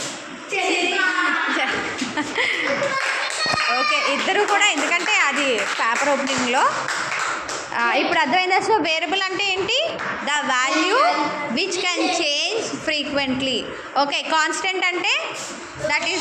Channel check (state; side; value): identical; both; correlation 1.00